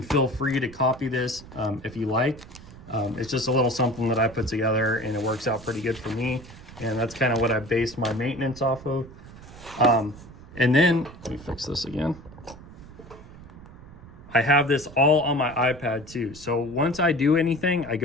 feel free to copy this if you like. It's just a little something that I put together, and it works out pretty good for me. And that's kind of what I based my maintenance off of. And then, let me fix this again. I have this all on my iPad too. So once I do anything, I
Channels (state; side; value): noise; right; rumble, 18 dB below the sound